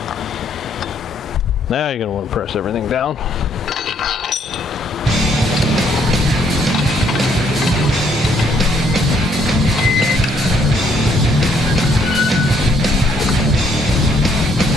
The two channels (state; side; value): normal; both; correlation 0.68